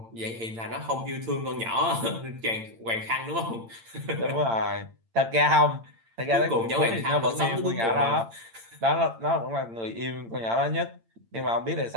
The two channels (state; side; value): late; left; 8.8 ms